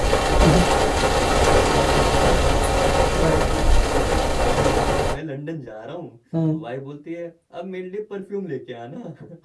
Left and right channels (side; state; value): both; identical; correlation 1.00